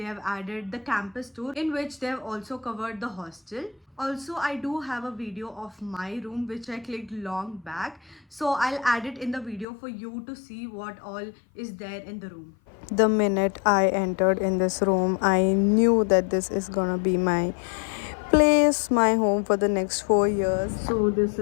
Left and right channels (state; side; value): drops out; right; at 9.7 s